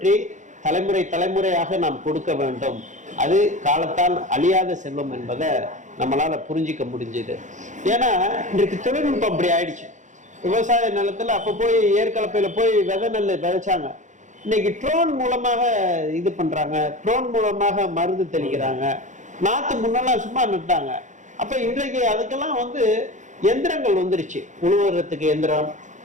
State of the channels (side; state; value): left; late; 0.35 ms